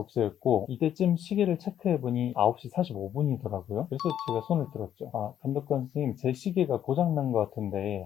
이때쯤 시계를 체크해보니 9시 45분이더라고요. 그래서 제가 손을 들었죠. 아, 감독관 선생님 제 시계가 고장난 것 같은데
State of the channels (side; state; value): right; quieter; 10.3 dB